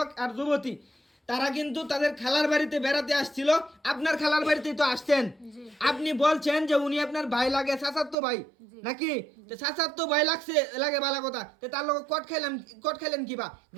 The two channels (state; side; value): drops out; left; at 8.2 s